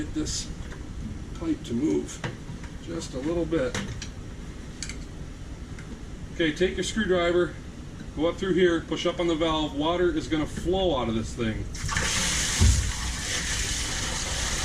this pipe to move just a little bit. Okay, take your screwdriver, go up through here, push up on the valve. Water is going to flow out of this thing.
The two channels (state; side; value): identical; both; correlation 1.00